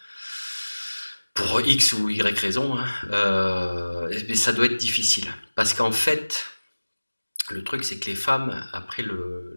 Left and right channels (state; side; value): inverted; both; correlation -1.00